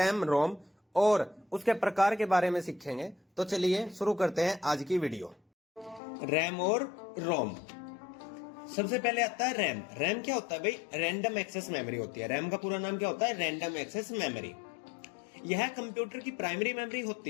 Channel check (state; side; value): drops out; right; at 6.0 s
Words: रोम और उसके प्रकार के बारे में सीखेंगे। तो चलिए शुरू करते हैं आज की वीडियो। रैम और रोम। सबसे पहले आता है रैम। रैम क्या होता है भाई? रैंडम एक्सेस मेमोरी होती है। रैम का पूरा नाम क्या होता है? Random access memory. यह कंप्यूटर की प्राइमरी मेमोरी